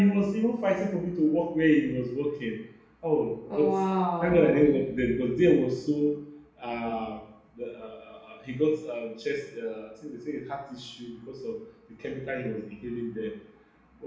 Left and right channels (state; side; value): identical; both; correlation 1.00